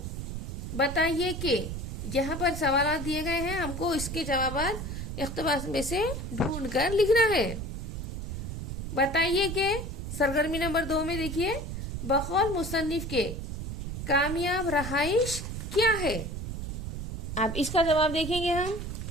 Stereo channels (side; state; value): right; noise; rumble, 5 dB below the sound